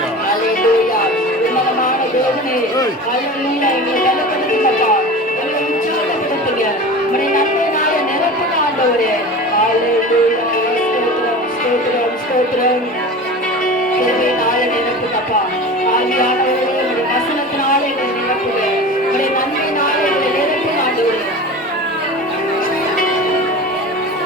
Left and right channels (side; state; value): both; normal; correlation 0.33